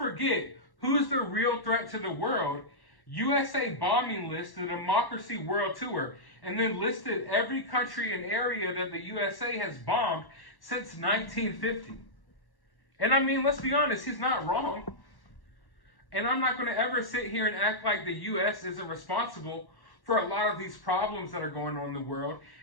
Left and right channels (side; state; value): right; late; 1.1 ms